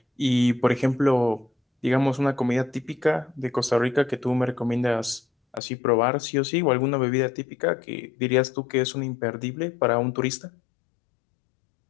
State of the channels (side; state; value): right; drops out; at 5.6 s